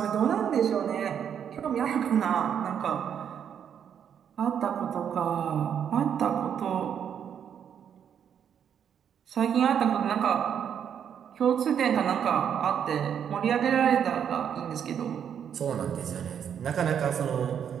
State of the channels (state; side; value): quieter; left; 8.4 dB